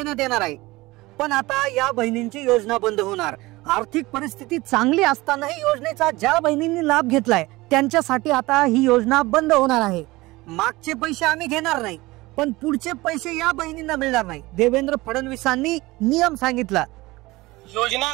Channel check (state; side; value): quieter; left; 20.6 dB